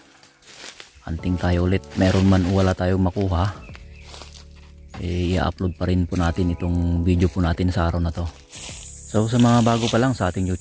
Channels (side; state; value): both; identical; correlation 1.00